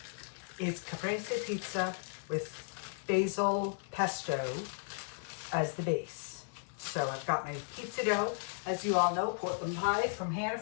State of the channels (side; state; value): right; silent; 54 dB below the other